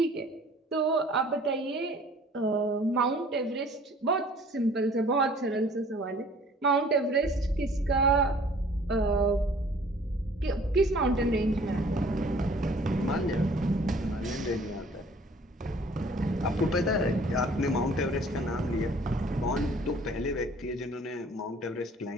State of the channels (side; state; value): both; normal; correlation 0.53